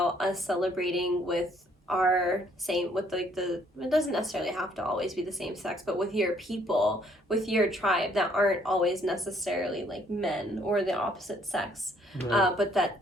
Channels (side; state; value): both; normal; correlation 0.65